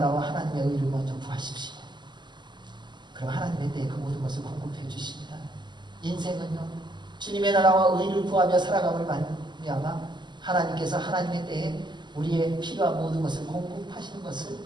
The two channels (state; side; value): late; left; 0.21 ms